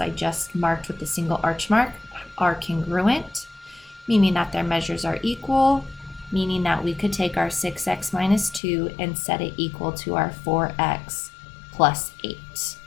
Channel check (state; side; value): drops out; right; at 8.6 s